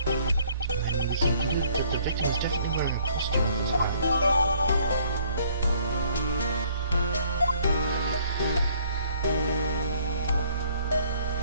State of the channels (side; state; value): both; inverted; correlation -0.61